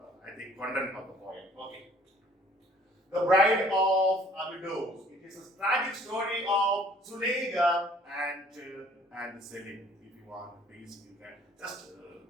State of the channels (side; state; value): both; normal; correlation 0.56